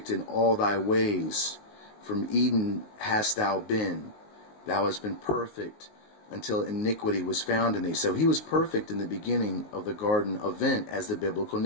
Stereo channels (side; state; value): right; late; 19 ms